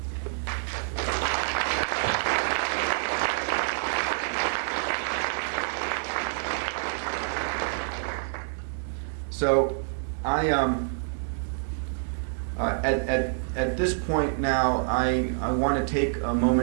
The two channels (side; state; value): left; silent; digital silence